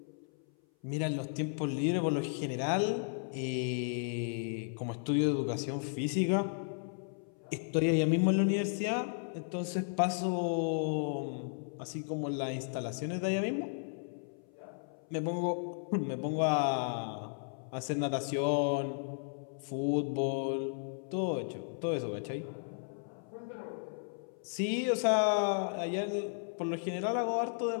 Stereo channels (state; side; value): silent; right; 55 dB below the other